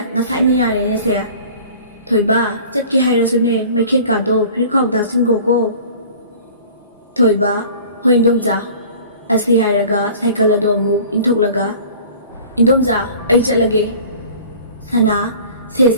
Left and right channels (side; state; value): both; inverted; correlation -0.45